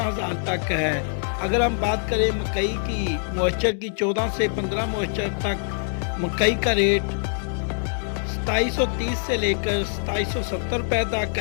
तक है। अगर हम बात करें मकई की मॉइस्चर की 14 से 15 मॉइस्चर तक मकई का रेट 2730 से लेकर 2770 रुपये तक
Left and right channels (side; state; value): right; silent; 62 dB below the other